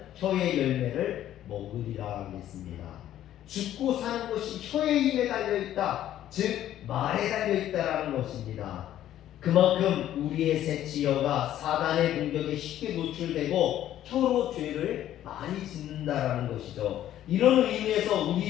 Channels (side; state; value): right; quieter; 12.2 dB